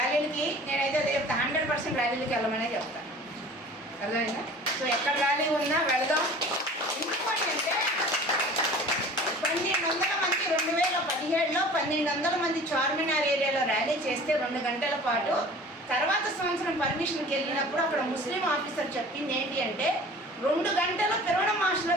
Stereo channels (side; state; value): both; normal; correlation 0.44